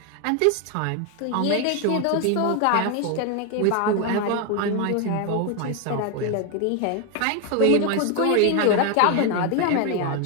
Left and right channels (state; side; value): different; both; correlation 0.01